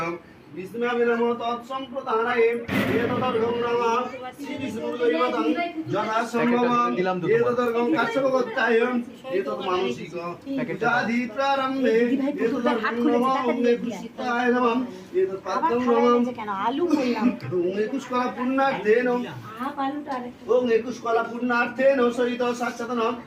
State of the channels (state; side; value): identical; both; correlation 1.00